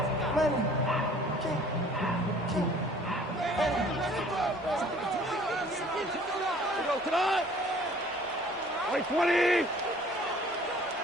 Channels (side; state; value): both; normal; correlation 0.53